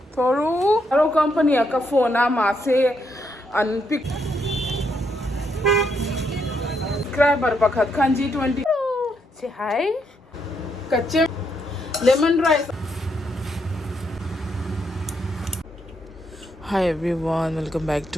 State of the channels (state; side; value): normal; both; correlation 0.77